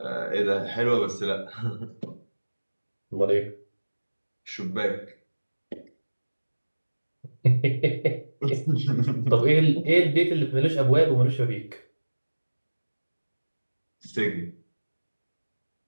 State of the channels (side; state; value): both; inverted; correlation -1.00